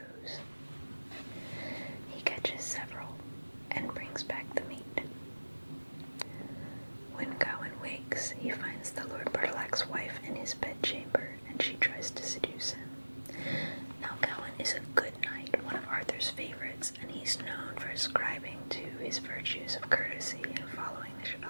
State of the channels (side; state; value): both; inverted; correlation -1.00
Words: He catches several and brings back the meat. When Gawain wakes, he finds the Lord Bertilac's wife in his bedchamber, and she tries to seduce him. Now Gawain is a good knight, one of Arthur's favorites, and he's known for ascribing to his virtues of courtesy and following the